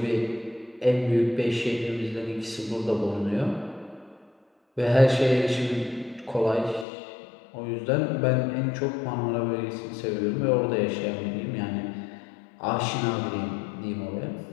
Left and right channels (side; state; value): right; drops out; at 6.9 s